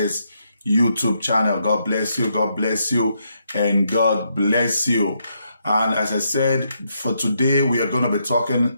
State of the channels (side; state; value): both; inverted; correlation -0.78